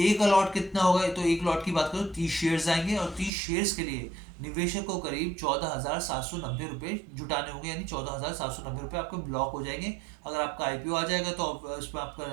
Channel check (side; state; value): left; drops out; at 3.3 s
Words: अलॉट कितना होगा, तो एक लॉट की बात करो 30 शेयर्स आएंगे और 30 शेयर्स के लिए निवेशक को करीब 14,790 रुपए जुटाने होंगे, यानी 14,790 रुपए आपके ब्लॉक हो जाएंगे। अगर आपका आईपीओ आ जाएगा तो उसमें आपका